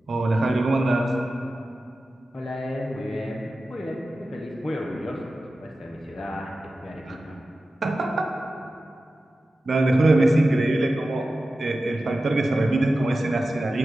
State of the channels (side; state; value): both; normal; correlation 0.94